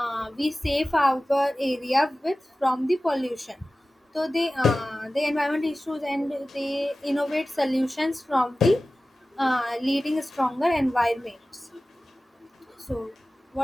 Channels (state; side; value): normal; both; correlation 0.96